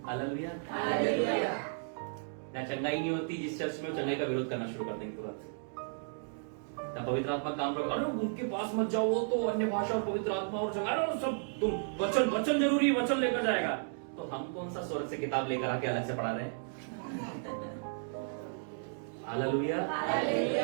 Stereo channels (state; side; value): silent; left; digital silence